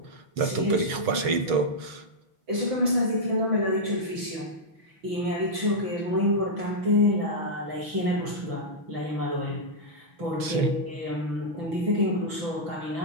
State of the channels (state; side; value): late; left; 6.4 ms